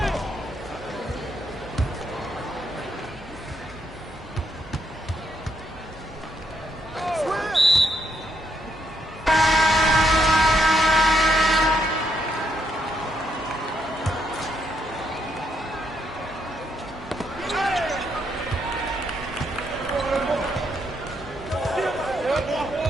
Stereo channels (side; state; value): both; normal; correlation 0.76